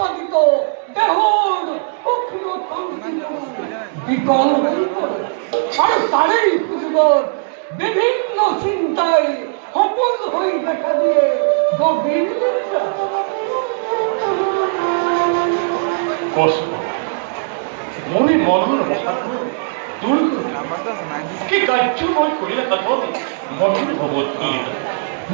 দেহৰ সূক্ষ্ম তন্ত্ৰীবোৰ বিকল হৈ পৰে আৰু তাৰেই সুযোগত বিভিন্ন চিন্তাই সপোন হৈ দেখা দিয়ে গভীৰ নিদ্ৰা। কষ্ট মই মনৰ অসাধ্য দূৰ কৰি কি কাৰ্য মই কৰিলে সাধন মনৰ ভৱধূলিত।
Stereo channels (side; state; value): left; silent; digital silence